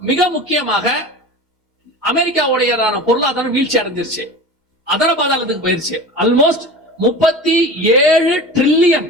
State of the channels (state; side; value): normal; both; correlation 0.33